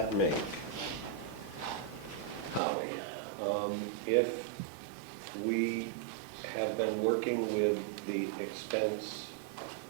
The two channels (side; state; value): left; drops out; at 2.6 s